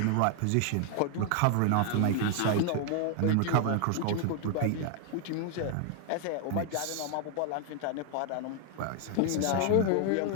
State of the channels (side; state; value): both; different; correlation 0.00